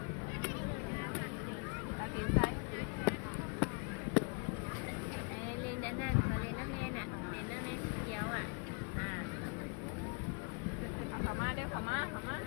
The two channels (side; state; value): right; quieter; 36.3 dB